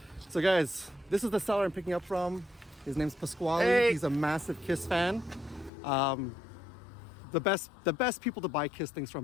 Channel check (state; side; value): drops out; right; at 5.7 s